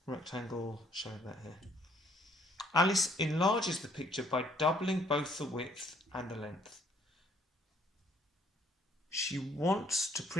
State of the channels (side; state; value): both; normal; correlation 0.64